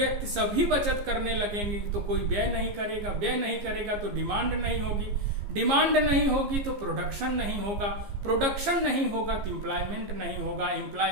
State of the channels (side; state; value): left; late; 15 ms